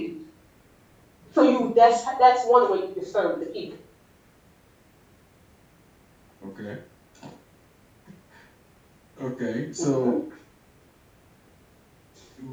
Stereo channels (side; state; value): both; identical; correlation 1.00